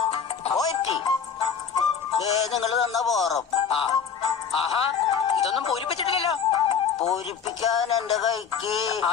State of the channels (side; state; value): right; quieter; 7.0 dB